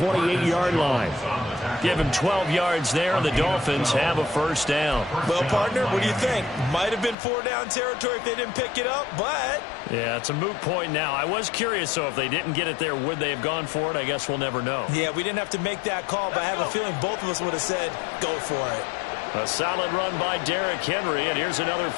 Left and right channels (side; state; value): right; drops out; at 7.2 s